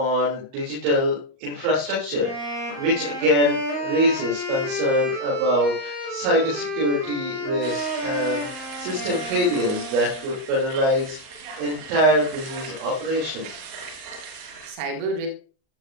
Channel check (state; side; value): late; left; 38 ms